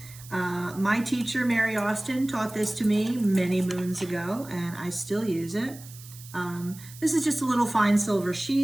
My teacher, Mary Austin, taught this to me many moons ago, and I still use it. This is just a little fine silver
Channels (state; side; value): noise; right; hiss, 18 dB below the sound